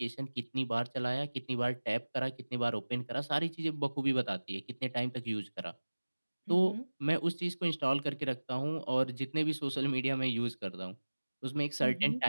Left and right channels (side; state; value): both; inverted; correlation -1.00